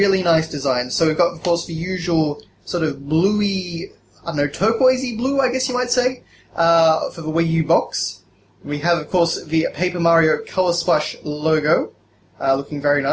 nice design. So we've got, of course, the usual sort of bluey, I don't know, turquoisey blue, I guess you might say, for the Wii U box. We have, of course, the Paper Mario Color Splash logo, looking very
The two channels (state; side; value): identical; both; correlation 1.00